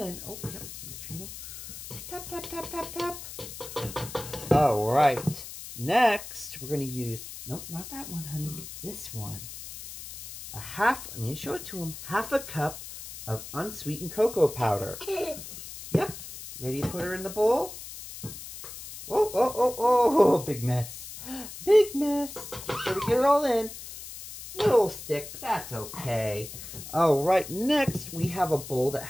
Oh, yep. Make sure you tap, tap, tap, tap, tap. All right. Next, we're going to use, nope, not that one, honey. This one. I need to show it to him. 1/2 cup of unsweetened cocoa powder. Yep. Ready to put her in the bowl? Oh, oh, oh, oh, big mess. Big mess. Make sure we get it all in. Little stick, but that's okay. All right, next we have a bowl that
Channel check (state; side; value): noise; left; hiss, 12 dB below the sound